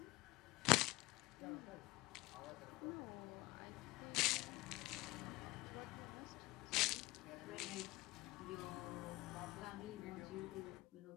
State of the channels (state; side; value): quieter; right; 20.0 dB